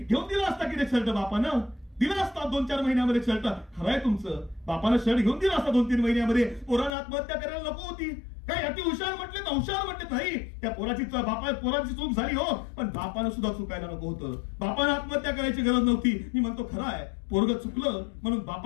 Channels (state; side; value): drops out; right; at 6.9 s